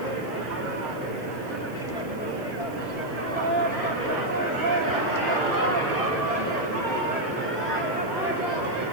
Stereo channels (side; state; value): right; noise; hiss, 25 dB below the sound